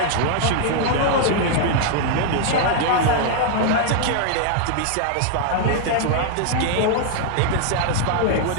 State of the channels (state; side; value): different; both; correlation 0.00